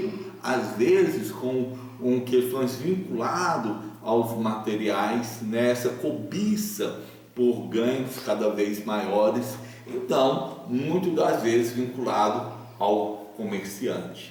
às vezes com questões vinculadas aos materiais, nessa cobiça por ganhos cada vez maiores, então, muitas das vezes vinculado ao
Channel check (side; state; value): both; identical; correlation 1.00